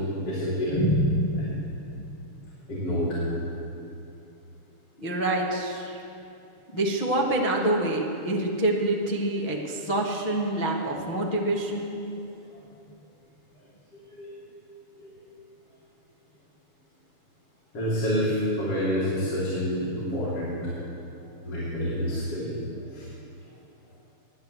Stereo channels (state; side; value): late; right; 6.3 ms